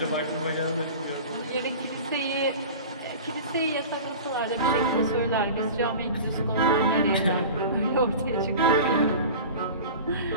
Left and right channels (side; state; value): both; inverted; correlation -0.36